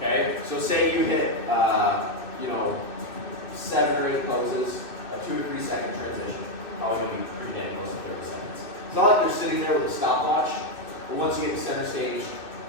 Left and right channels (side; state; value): right; late; 2.6 ms